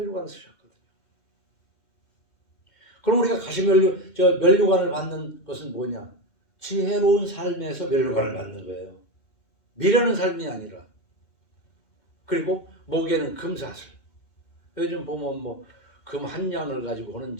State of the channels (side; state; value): right; late; 2.1 ms